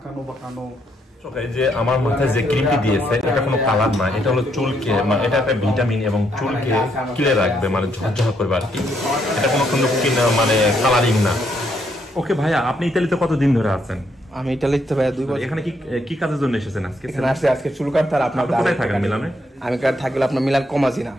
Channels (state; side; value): normal; both; correlation 0.75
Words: বাঁকানো। এই যে আমার মাথায় যে ক্রিমটি দিয়েছে এটা কোনো কালার না, এটা হলো চুলকে এটা একটা ভিটামিন এবং চুলকে ক্লিয়ার রাখবে, মানে ঝরঝর করবে আর কি। এটা কোনো মানে কালারিং না। ওকে ভাইয়া, আপনি ইতালিতে কতদিন ধরে আছেন? আমি ইটালিতে ভাইয়া 2 বছর। এখানে কি কাজের জন্য এসেছেন আজকে? এখানে আসছে আজকে চুল কাটতে। আর আপনার কোথায় থাকেন? মিলানে? আমি থাকলে আপনার মিলান কমাজিনা।